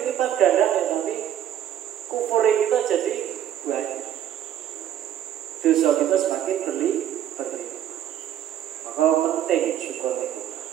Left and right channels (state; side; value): quieter; left; 10.8 dB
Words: ganda ya, tapi kufur kita jadi banyak. Dosa kita semakin berlipat. Maka penting syukur itu.